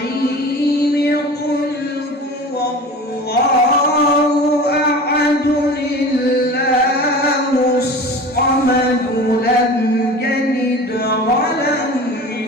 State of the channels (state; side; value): normal; both; correlation 0.36